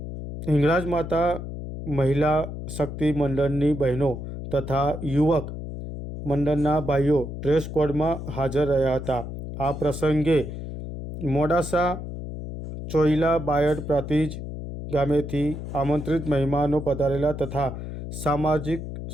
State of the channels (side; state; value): left; noise; hum, 8 dB below the sound